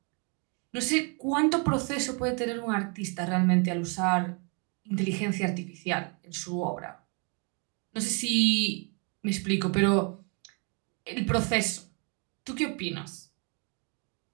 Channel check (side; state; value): left; quieter; 35.1 dB